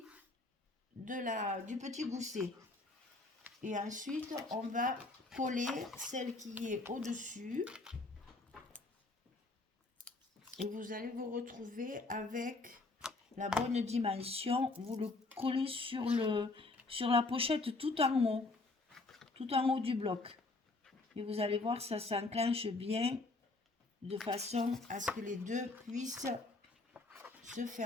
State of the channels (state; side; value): quieter; right; 3.3 dB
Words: du petit gousset. Et ensuite, on va coller celle qui est au-dessus. Et vous allez vous retrouver avec la bonne dimension. Vous le collez sur la pochette tout en haut du bloc. Et vous allez voir, ça s'enclenche bien de façon à ce que les deux puissent se